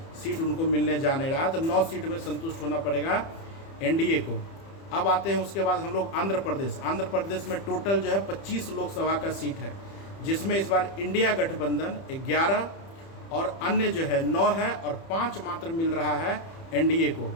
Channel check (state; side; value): late; right; 30 ms